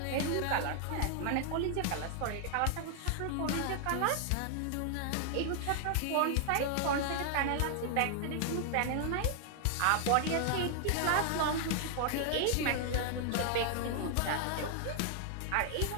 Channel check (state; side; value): different; both; correlation 0.00